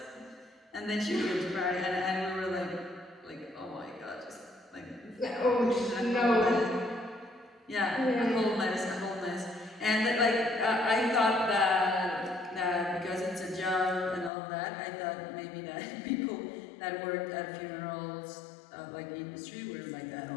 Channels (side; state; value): right; drops out; at 14.3 s